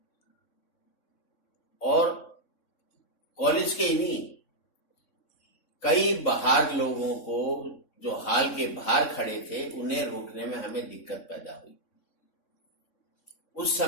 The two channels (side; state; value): right; late; 3.6 ms